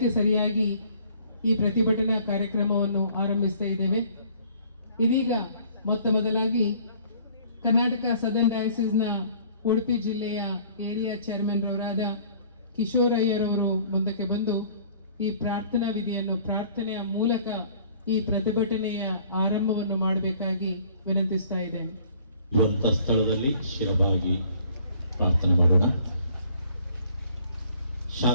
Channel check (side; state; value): both; inverted; correlation -0.55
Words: ಸರಿಯಾಗಿ ಈ ಪ್ರತಿಭಟನಾ ಕಾರ್ಯಕ್ರಮವನ್ನು ಆರಂಭಿಸ್ತಾ ಇದ್ದೇವೆ. ಇದೀಗ ಮೊತ್ತ ಮೊದಲಾಗಿ ಕರ್ನಾಟಕ ಸದರ್ನ್ ಡಯಾಸಿಸ್ನ ಉಡುಪಿ ಜಿಲ್ಲೆಯ ಏರಿಯಾ ಚೇರ್ಮನ್ ರವರಾದ ಕಿಶೋರಯ್ಯರವರು ಮುಂದಕ್ಕೆ ಬಂದು ಈ ಪ್ರಾರ್ಥನಾ ವಿಧಿಯನ್ನು ಪ್ರಾರ್ಥನೆಯ ಮೂಲಕ ಈ ಪ್ರತಿಭಟನೆಯ ಆರಂಭವನ್ನು ಮಾಡಬೇಕಾಗಿ ವಿನಂತಿಸ್ತಾ ಇದ್ದೇನೆ. ಸ್ಥಳದಲ್ಲಿ ಶಿರಬಾಗಿ ಪ್ರಾರ್ಥನೆ ಮಾಡೋಣ.